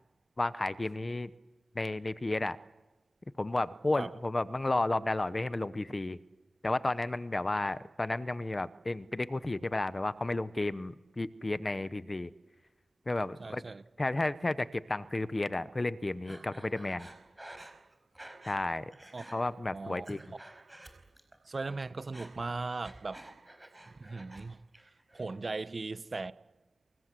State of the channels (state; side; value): normal; both; correlation 0.98